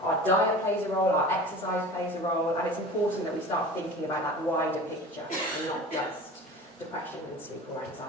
Our diet plays a role, our exercise plays a role, and it's important that we start thinking about that wider picture and not just depression and sleep or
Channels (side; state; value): both; normal; correlation 0.38